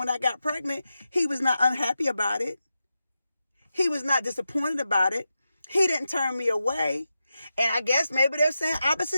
I got pregnant, he was not unhappy about it. He was not disappointed about it. He didn't turn me away. And I guess maybe they're saying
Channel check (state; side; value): inverted; both; correlation -0.90